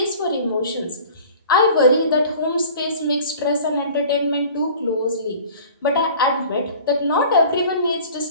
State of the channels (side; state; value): both; inverted; correlation -0.45